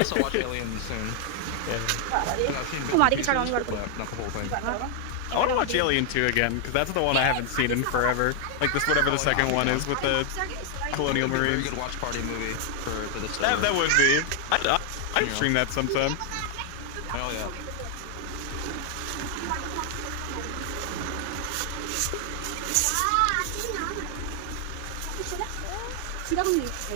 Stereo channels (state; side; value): different; both; correlation 0.00